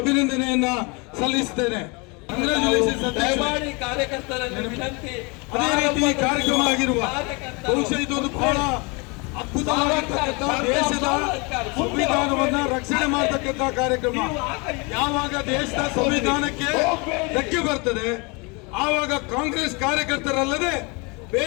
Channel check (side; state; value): right; quieter; 29.4 dB